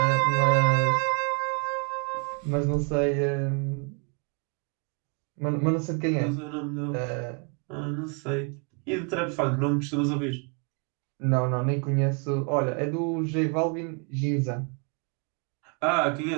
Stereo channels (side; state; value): left; quieter; 37.1 dB